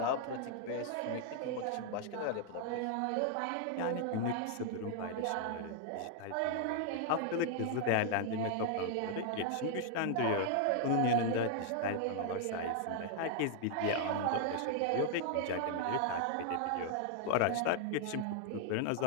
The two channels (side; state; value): both; different; correlation 0.00